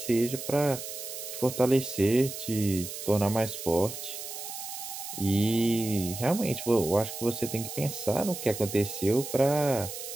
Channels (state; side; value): noise; right; hiss, 8 dB below the sound